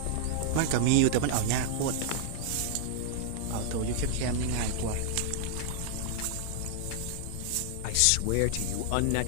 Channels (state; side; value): different; both; correlation -0.01